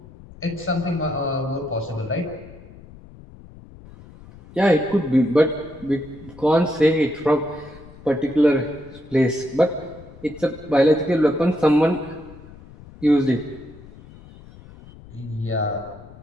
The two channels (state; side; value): noise; left; rumble, 20 dB below the sound